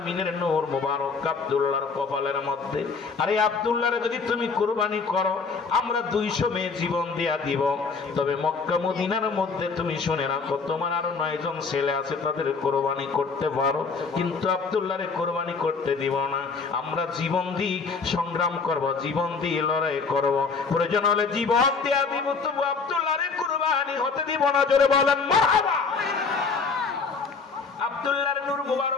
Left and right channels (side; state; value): right; quieter; 4.8 dB